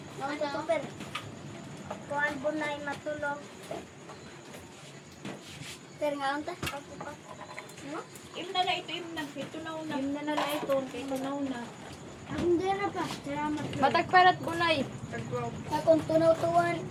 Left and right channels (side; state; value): both; identical; correlation 1.00